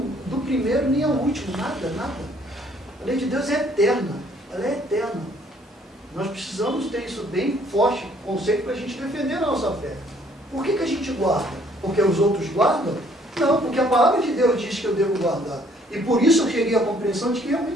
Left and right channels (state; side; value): normal; both; correlation 0.62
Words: primeiro, nem ao último. Nada, nada. A lei de Deus é eterna. Ela é eterna. Nós precisamos ter isso bem forte, conceito, para a gente defender a nossa fé. Por que a gente guarda? Porque os outros guardam? Não, porque a palavra de Deus diz que eu devo guardar. E por isso eu cheguei à compreensão de que